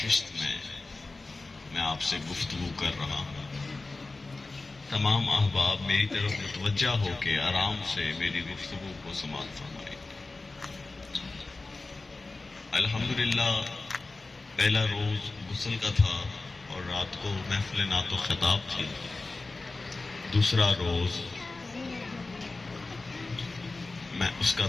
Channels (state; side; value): quieter; right; 3.4 dB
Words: میں آپ سے گفتگو کر رہا ہوں۔ تمام احباب میری طرف متوجہ ہو کے آرام سے میری گفتگو کو سماعت فرمائیں۔ الحمدللہ پہلا روز غسل کا تھا اور رات کو محفل نعت و خطاب تھی۔ دوسرا روز میں اس کا